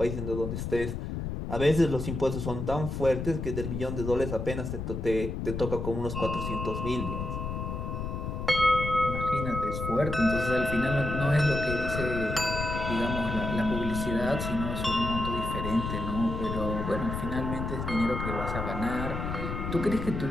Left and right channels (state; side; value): noise; left; rumble, 4 dB below the sound